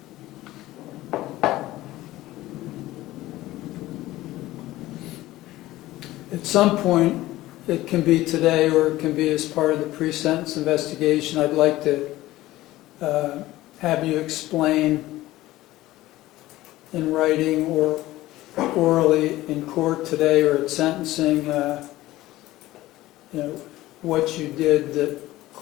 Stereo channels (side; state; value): right; quieter; 16.7 dB